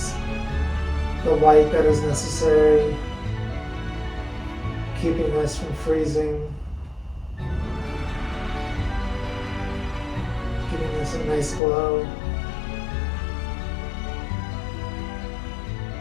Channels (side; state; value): right; drops out; at 11.6 s